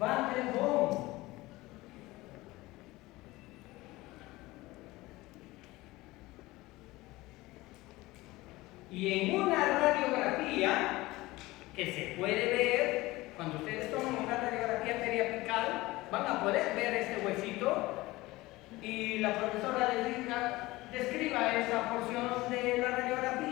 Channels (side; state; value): right; quieter; 19.7 dB